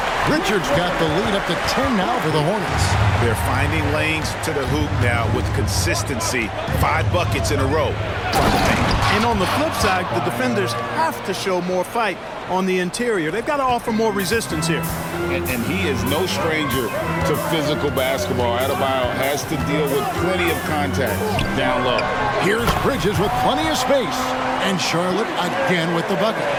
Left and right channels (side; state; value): both; identical; correlation 1.00